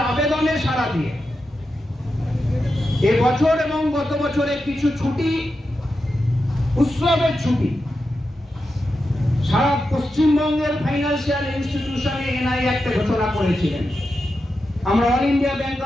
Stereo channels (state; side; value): normal; both; correlation 0.89